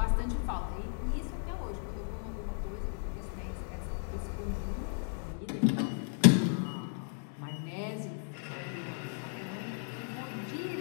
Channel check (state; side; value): silent; right; 54 dB below the other